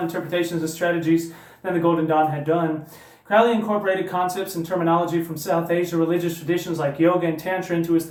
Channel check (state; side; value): identical; both; correlation 1.00